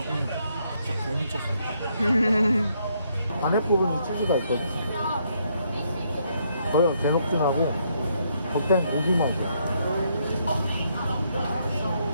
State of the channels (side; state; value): both; inverted; correlation -0.73